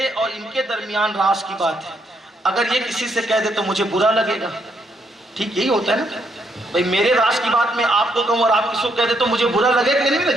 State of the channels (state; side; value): normal; both; correlation 0.75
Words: اور ان کے درمیان راز کی بات ہے، اگر یہ کسی سے کہہ دے تو مجھے برا لگے گا. ٹھیک یہی ہوتا ہے نا بھائی، میرے راز کی بات میں آپ کو کہوں اور آپ کسی کو کہہ دے تو مجھے برا لگے گا کہ نہیں